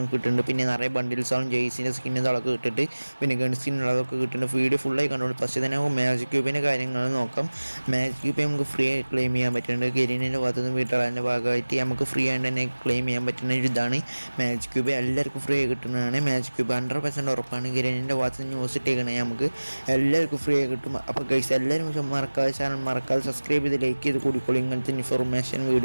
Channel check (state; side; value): inverted; both; correlation -1.00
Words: കിട്ടുന്നുണ്ട്. പിന്നെ നിറയെ ബണ്ടിൽസാളും ജെയ്സിൻ്റെ സ്കിന്നും അതൊക്കെ കിട്ടിയിട്ട് പിന്നെ ഗൺ സ്കിന്നുള്ളതൊക്കെ കിട്ടുന്നുണ്ട്. വീഡിയോ ഫുള്ളായി കണ്ടോളൂ. പക്ഷേ തന്നെ നമുക്ക് മാജിക് ക്യൂബിൻ്റെ കാര്യങ്ങൾ നോക്കാം. മാജിക് ക്യൂബ് നമുക്ക് ഫ്രീ ആയി ക്ലെയിം ചെയ്യാൻ പറ്റുന്നുണ്ട്. ഗെരീനിൻ്റെ ഭാഗത്തുനിന്ന് വിണ്ടർലാൻഡിൻ്റെ ഭാഗമായിട്ട് നമുക്ക് ഫ്രീ ആയിട്ട് തന്നെ ക്ലെയിം ചെയ്യാൻ പറ്റുന്ന ഒരു ഇതാണ് മാജിക് ക്യൂബ്. എല്ലാവർക്കും ഫ്രീ ആയി കിട്ടുന്നതാണ് മാജിക് ക്യൂബ്. 100% ഉറപ്പാണ്. ഗെരീനിൻ്റെ ഭാഗത്ത് നിന്ന് ന്യൂസ് ഇട്ടേക്കണേ നമുക്ക് എല്ലാവർക്കും ഫ്രീ ആയി കിട്ടും. അപ്പോൾ ഗൈസ് എല്ലാവരും മറക്കാതെ ചാനൽ മറക്കാതെ സബ്സ്ക്രൈബ് ചെയ്ത് ലൈക്ക് ചെയ്ത് കൂടിക്കോളൂ. ഇങ്ങനത്തെ ഇൻഫോർമേഷൻ